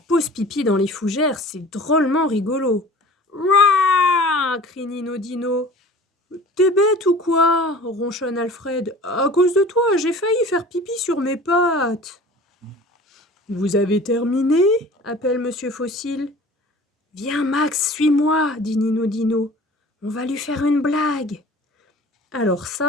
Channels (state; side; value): normal; both; correlation 0.44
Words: pipi dans les fougères, c'est drôlement rigolo. Rah! Crie Nino Dino. T'es bête ou quoi? Ronchonne Alfred. À cause de toi, j'ai failli faire pipi sur mes pattes. Vous avez terminé? Appelle Monsieur Fossile. Viens Max, suis-moi, dit Nino Dino. On va lui faire une blague. Alors